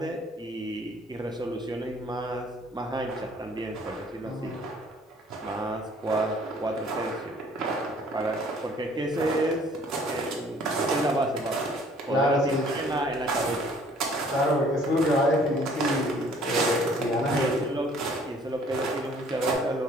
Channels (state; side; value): normal; both; correlation 0.57